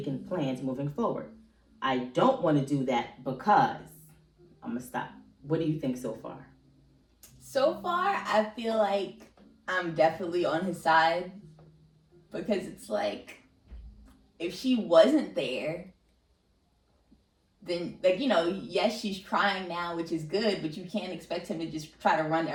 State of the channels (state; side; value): identical; both; correlation 1.00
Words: plans moving forward. I don't want to do that because I'm going to stop. What do you think so far? So far, I feel like I'm definitely on his side, because it's like, if she wasn't there, then, like, yes, she's trying now, which is good, but you can't expect him to just try to run